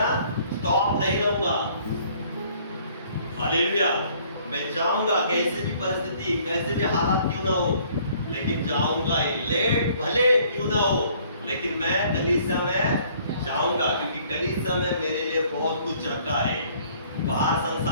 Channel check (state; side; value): inverted; both; correlation -0.59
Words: स्टॉप नहीं रहूंगा। हालेलुया। मैं जाऊंगा, कैसे भी परिस्थिति, कैसे भी हालात क्यों ना हो, लेकिन जाऊंगा ही। लेट भले क्यों ना हो, लेकिन मैं कलीसिया में जाऊंगा, क्योंकि कलीसिया में मेरे लिए बहुत कुछ रखा है। बाहर